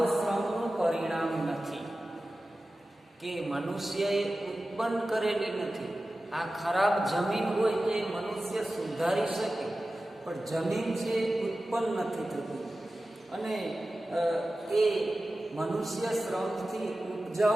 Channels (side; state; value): both; normal; correlation 0.95